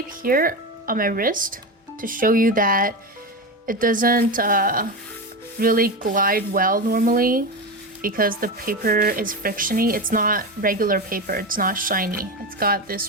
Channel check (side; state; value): both; normal; correlation 0.19